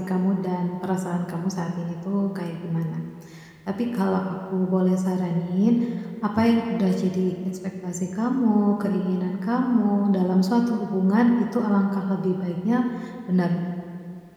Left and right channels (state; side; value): identical; both; correlation 1.00